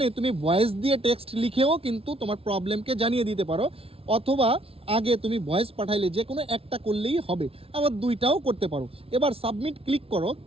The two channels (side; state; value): left; late; 0.27 ms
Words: তুমি ভয়েস দিয়ে টেক্সট লিখেও কিন্তু তোমার প্রবলেমকে জানিয়ে দিতে পারো, অথবা আগে তুমি ভয়েস পাঠাইলে যে কোনো একটা করলেই হবে, আবার দুইটাও করতে পারো। এবার সাবমিট ক্লিক করো।